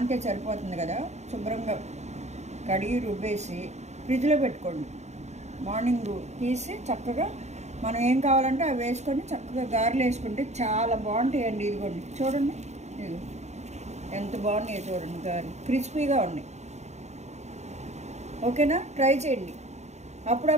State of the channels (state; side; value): late; left; 0.33 ms